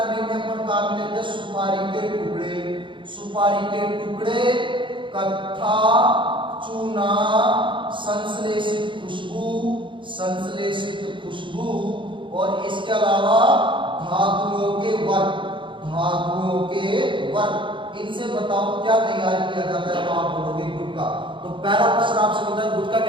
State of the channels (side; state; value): left; late; 0.24 ms